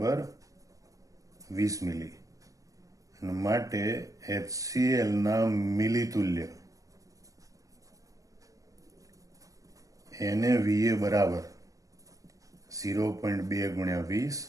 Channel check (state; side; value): late; left; 0.16 ms